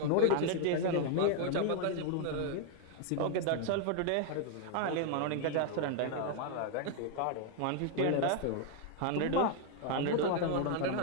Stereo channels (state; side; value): different; both; correlation 0.00